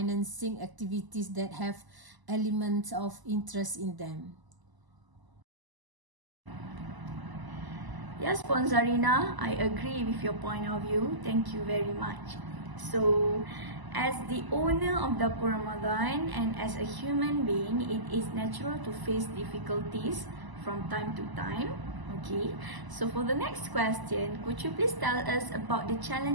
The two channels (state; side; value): late; left; 1.0 ms